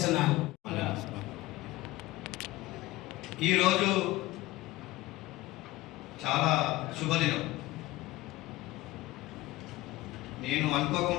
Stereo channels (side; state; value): right; quieter; 18.3 dB